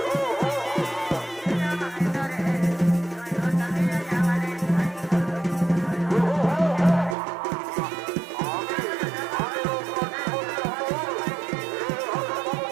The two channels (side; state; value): left; drops out; at 7.2 s